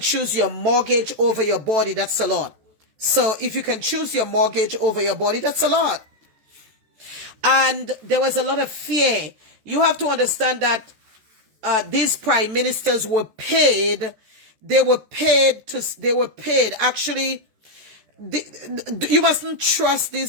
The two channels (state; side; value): late; left; 14 ms